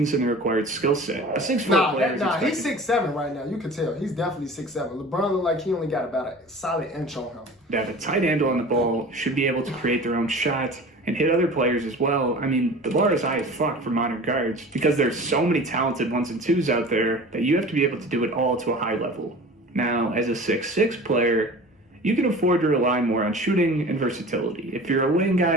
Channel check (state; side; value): normal; both; correlation 0.39